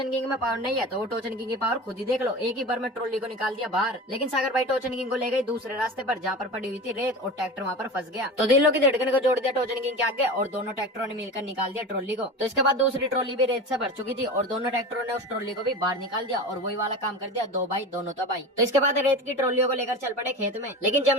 किंग में पावर नहीं है, तो वो टोचन किंग की पावर खुद ही देख लो। एक ही बार में ट्रॉली को निकाल दिया बाहर। लेकिन सागर भाई टोचन किंग को ले गई दूसरे रास्ते पर, जहाँ पर पड़ी हुई थी रेत, और ट्रैक्टर वहाँ पर फंस गया। तो दिलों की धड़कन को जोड़ दिया टोचन किंग के आगे, और दोनों ट्रैक्टरों ने मिलकर निकाल दिया ट्रॉली को। तो इसके बाद दूसरी ट्रॉली भी रेत से भर चुकी थी, और दोनों ट्रैक्टरों ने उस ट्रॉली को भी बाहर निकाल दिया, और वही वाला काम कर दिया, दो भाई दोनों तबाही। तो इसके बाद रेत की ट्रॉलियों को लेकर चल पड़े खेत में। लेकिन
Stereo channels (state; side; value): normal; both; correlation 0.30